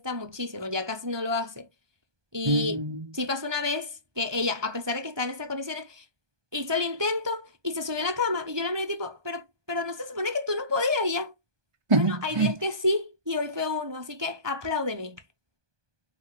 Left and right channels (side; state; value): left; late; 1.2 ms